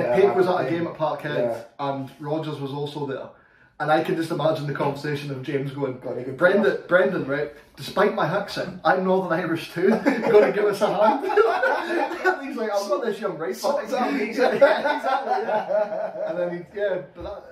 was at a game at Parkhead, and Rodgers was also there. And I can just imagine the conversation of James going, Brendan, right, despite my accent, I'm Northern Irish too, you're going to give us a hand? And he's like, I've got this young right back. Exactly. And then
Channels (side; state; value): both; identical; correlation 1.00